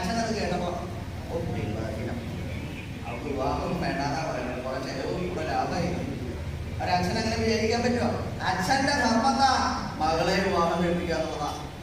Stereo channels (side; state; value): both; identical; correlation 1.00